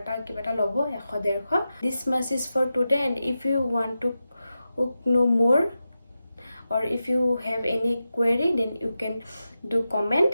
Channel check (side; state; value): both; inverted; correlation -0.91